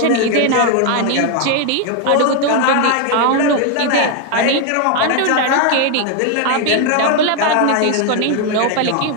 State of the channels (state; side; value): different; both; correlation 0.01